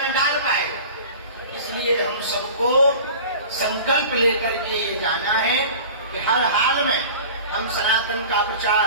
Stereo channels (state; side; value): inverted; both; correlation -0.39